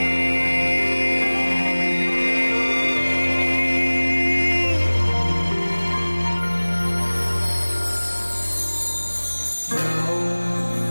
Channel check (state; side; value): inverted; both; correlation -1.00